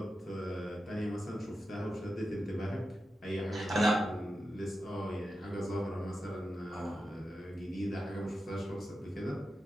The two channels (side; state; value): both; normal; correlation 0.90